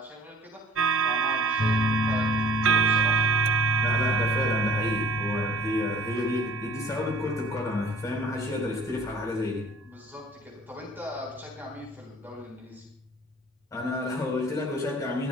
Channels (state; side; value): normal; both; correlation 0.50